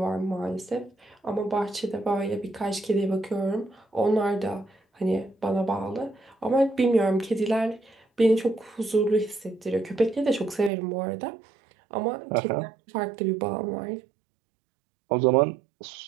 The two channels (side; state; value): left; drops out; at 10.7 s